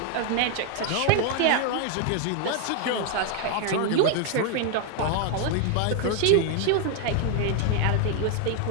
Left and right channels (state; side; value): different; both; correlation 0.01